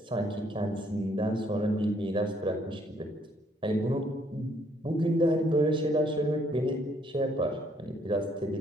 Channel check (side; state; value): both; normal; correlation 0.67